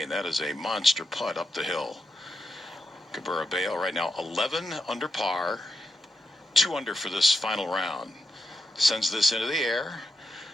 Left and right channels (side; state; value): both; normal; correlation 0.86